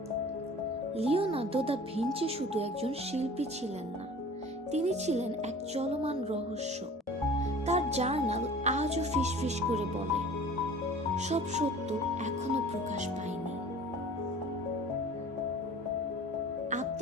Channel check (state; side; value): normal; both; correlation 0.44